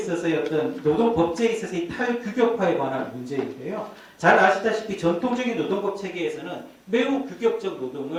어떤 노동법제에 있어서의 탈규격화에 관한 문제인데요. 잘 아시다시피 전통적인 노동법 체계에서는 매우 규격적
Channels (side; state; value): both; identical; correlation 1.00